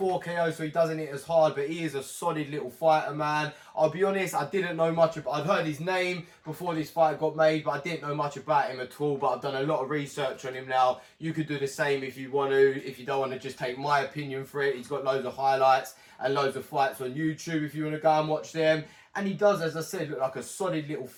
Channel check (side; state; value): both; identical; correlation 1.00